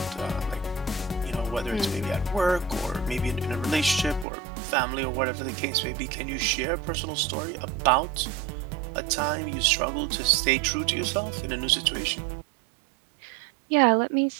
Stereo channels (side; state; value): left; drops out; at 4.2 s